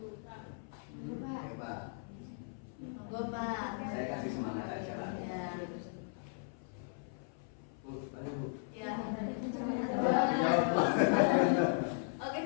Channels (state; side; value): silent; right; 53 dB below the other